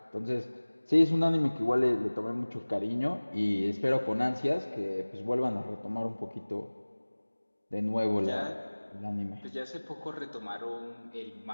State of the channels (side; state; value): both; inverted; correlation -1.00